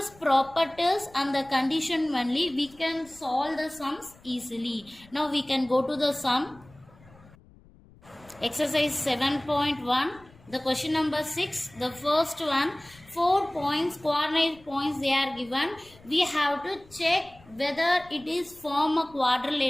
properties and the condition only, we can solve the sums easily. Now we can go to the sum. Exercise 7.1. The question number 6. The first one, 4 points, coordinate points they are given. We have to check whether it is form a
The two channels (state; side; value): noise; left; rumble, 25 dB below the sound